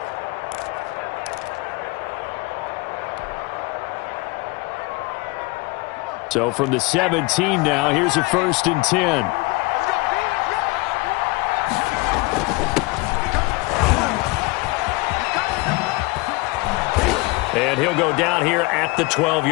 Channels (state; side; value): quieter; right; 23.9 dB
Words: So from the 17 now, here's a 1st and 10. And he'll go down here at the